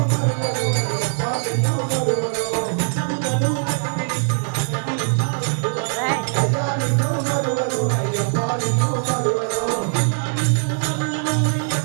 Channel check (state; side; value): silent; left; digital silence